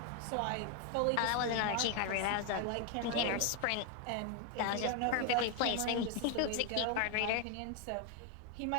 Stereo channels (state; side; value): different; both; correlation 0.01